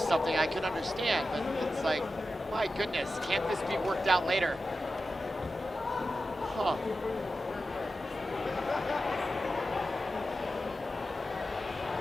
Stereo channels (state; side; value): normal; both; correlation 0.92